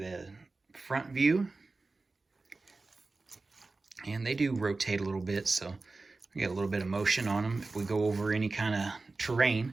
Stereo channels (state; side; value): quieter; left; 3.6 dB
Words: front view. And they do rotate a little bit, so we get a little bit of motion on them if we go over any kind of